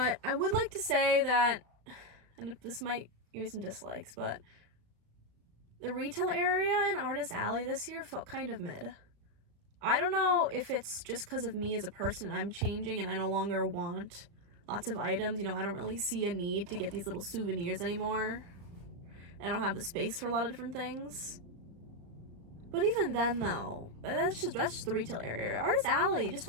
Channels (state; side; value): late; left; 35 ms